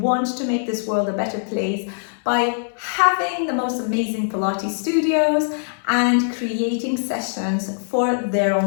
to make this world a better place by having the most amazing Pilates studios and creating sessions for their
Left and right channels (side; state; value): right; silent; 61 dB below the other